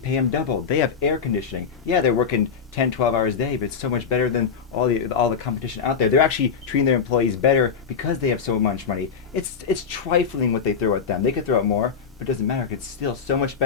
them double. They have air conditioning. Yeah, they're working 10, 12 hours a day, but it's so much better than all the competition out there. They're actually treating their employees better because they have so much money. It's trifling what they throw at them. They could throw out more, but it doesn't matter. It's still so much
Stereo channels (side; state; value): right; quieter; 6.2 dB